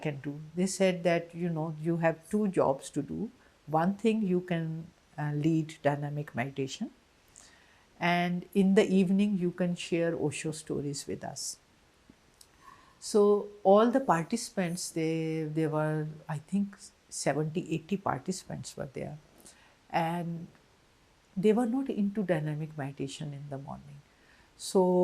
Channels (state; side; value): identical; both; correlation 1.00